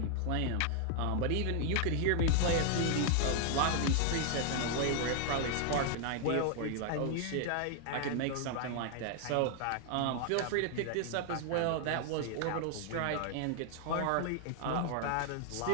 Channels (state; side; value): different; both; correlation 0.00